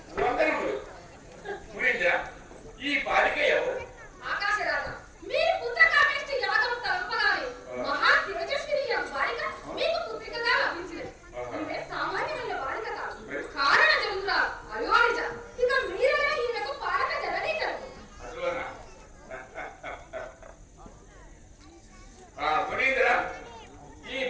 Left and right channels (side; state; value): both; identical; correlation 1.00